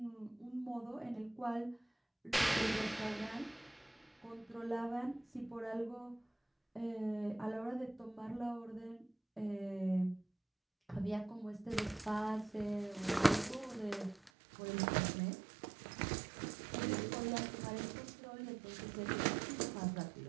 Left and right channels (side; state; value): left; drops out; at 14.3 s